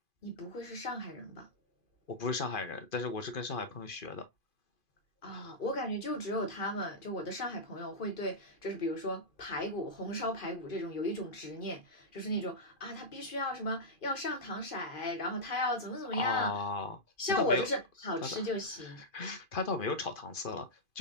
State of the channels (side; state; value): right; late; 2.5 ms